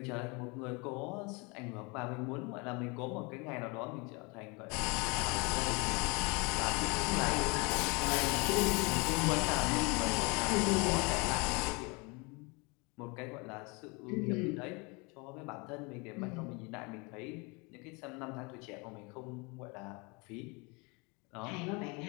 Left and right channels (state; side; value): quieter; right; 29.2 dB